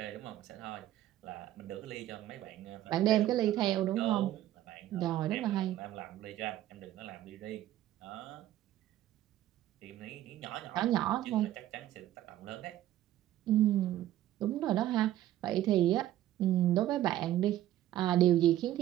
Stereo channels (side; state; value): left; quieter; 13.4 dB